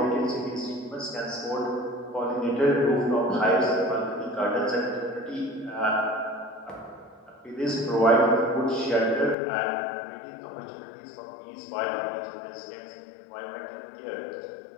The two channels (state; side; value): drops out; right; at 9.3 s